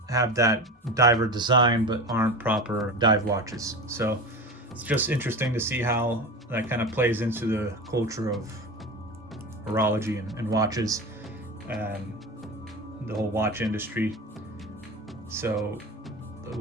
have that diver design but aren't proper dive watches. So it's just interesting to see how that kind of plays into the culture of horology and watches and the whole watch industry. So the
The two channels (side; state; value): both; normal; correlation 0.28